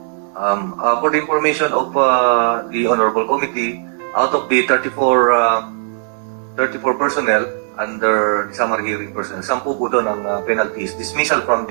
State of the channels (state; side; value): silent; left; 62 dB below the other